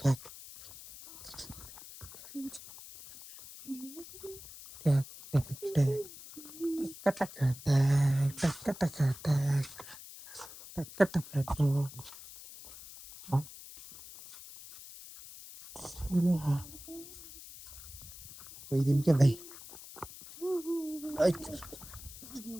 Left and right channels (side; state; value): left; noise; hiss, 15 dB below the sound